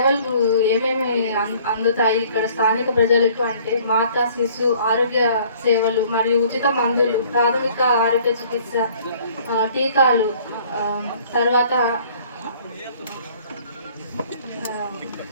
ఏమేమి అందుతాయి ఇక్కడ స్థానిక ప్రజలకు అంటే మాతా శిశు ఆరోగ్య సేవలు మరియు ఉచిత మందులు, ప్రాథమిక ఆరోగ్య చికిత్స, టీకాలు, తర్వాత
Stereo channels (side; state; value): both; inverted; correlation -0.56